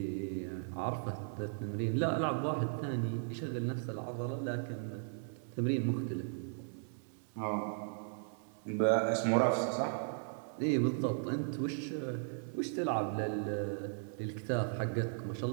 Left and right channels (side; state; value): left; silent; 53 dB below the other